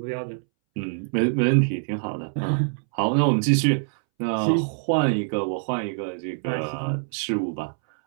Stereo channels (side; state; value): left; silent; 62 dB below the other